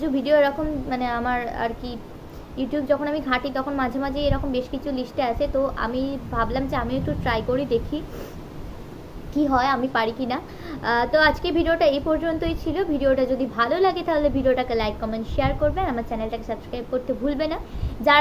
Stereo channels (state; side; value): identical; both; correlation 1.00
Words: ভিডিও এরকম মানে আমার আর কি ইউটিউব যখন আমি ঘাঁটি তখন মাঝে মাঝে এরকম বেশ কিছু লিস্টে আছে, তো আমি ভাবলাম যে আমি একটু ট্রাই করি, দেখি কি হয়, আমি পারি কি না। তো আজকে ভিডিওটা এই পর্যন্তই ছিল। ভিডিওটা যদি ভালো লাগে তাহলে ভিডিওটাকে লাইক কমেন্ট শেয়ার করবেন, আমার চ্যানেলটাকে সাবস্ক্রাইব করতে ভুলবে না।